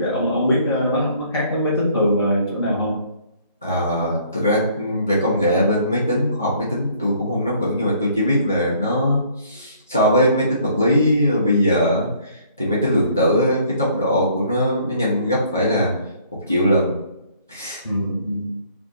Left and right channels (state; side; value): inverted; both; correlation -0.60